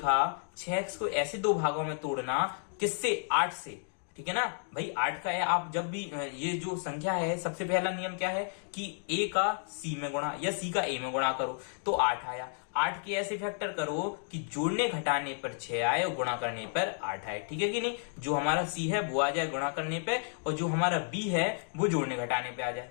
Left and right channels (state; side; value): silent; right; 56 dB below the other